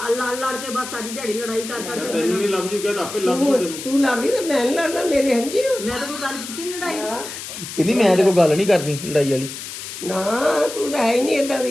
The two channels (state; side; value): noise; left; hiss, 10 dB below the sound